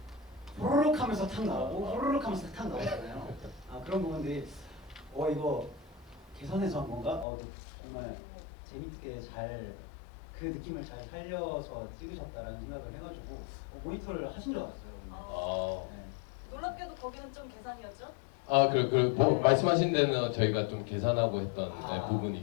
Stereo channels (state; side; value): drops out; right; at 7.2 s